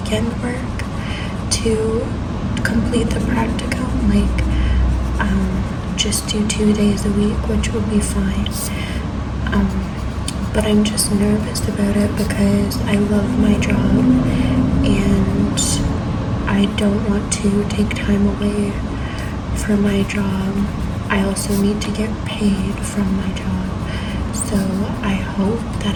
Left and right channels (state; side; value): identical; both; correlation 1.00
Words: work to complete the practicum, like just do 2 days a week, which would be fine. But I'm just nervous about it because I love my job and I don't want to take time away for my job. I I also need to get paid from my job. So I hope that